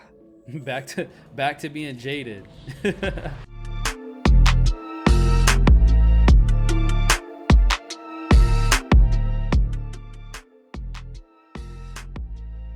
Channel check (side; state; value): both; identical; correlation 1.00